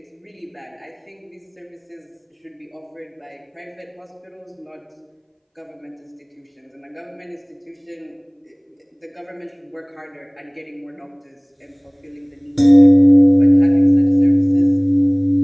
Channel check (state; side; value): identical; both; correlation 1.00